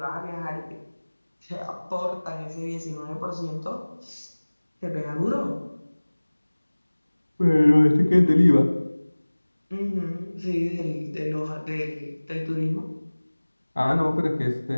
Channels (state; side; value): inverted; both; correlation -1.00